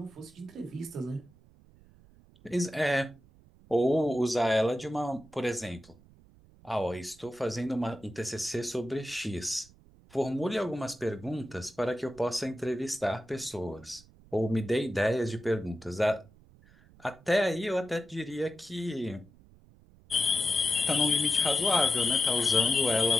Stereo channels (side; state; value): right; noise; rumble, 26 dB below the sound